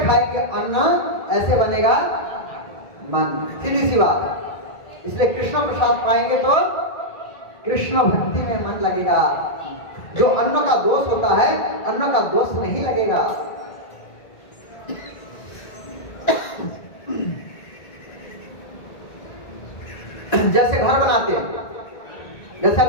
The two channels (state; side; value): late; right; 1.9 ms